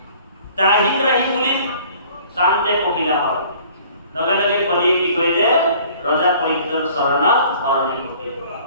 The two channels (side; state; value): both; inverted; correlation -0.52